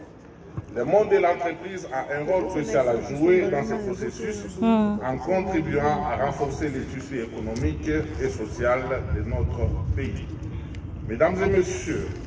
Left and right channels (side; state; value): both; identical; correlation 1.00